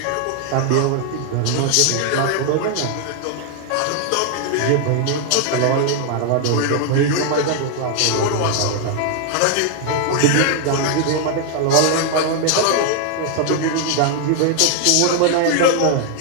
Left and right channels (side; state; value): both; different; correlation 0.00